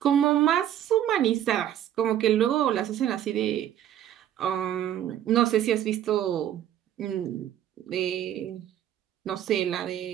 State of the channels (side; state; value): left; quieter; 11.1 dB